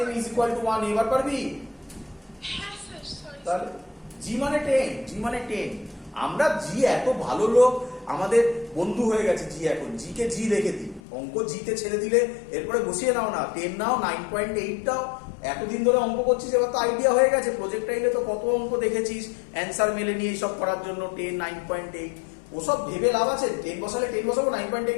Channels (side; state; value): right; drops out; at 11.0 s